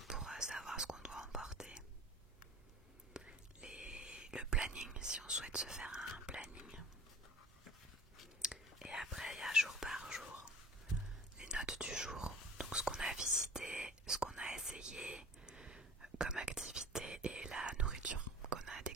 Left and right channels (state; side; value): normal; both; correlation 0.42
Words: pour savoir ce qu'on doit emporter. Le planning, si on souhaite se faire un planning. Et après il y a jour par jour les notes du jour, donc ce qu'on a visité, ce qu'on a essayé comme activité et la nourriture qu'on a